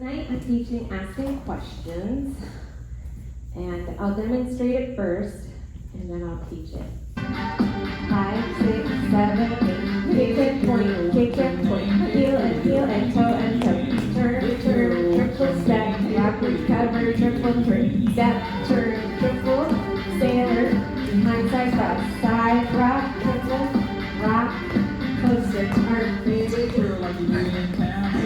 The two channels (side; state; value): both; identical; correlation 1.00